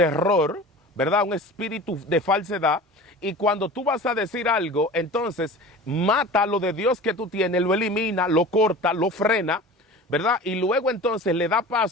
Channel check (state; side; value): normal; both; correlation 0.37